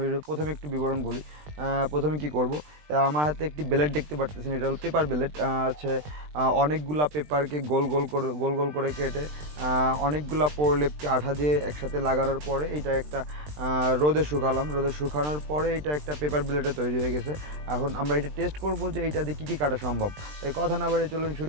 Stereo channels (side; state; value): left; late; 20 ms